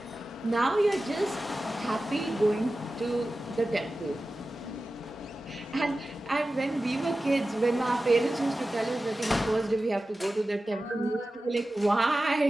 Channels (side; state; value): both; normal; correlation 0.94